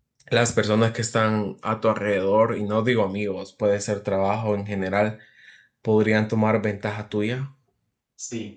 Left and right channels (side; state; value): both; identical; correlation 1.00